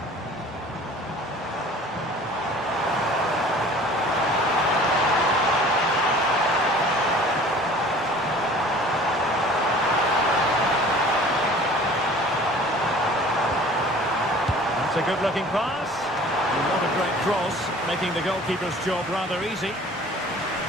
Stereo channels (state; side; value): normal; both; correlation 0.47